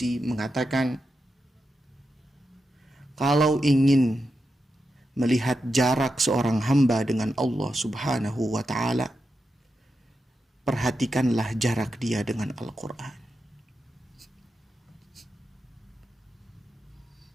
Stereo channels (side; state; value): both; normal; correlation 0.88